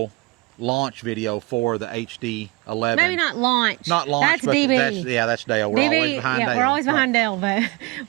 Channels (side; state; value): left; quieter; 23.5 dB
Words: launch video for the HD11. Maybe not launch. Not launch, that's but DB. That's Dale. We're DB, always behind Dale. We're always behind Dale, but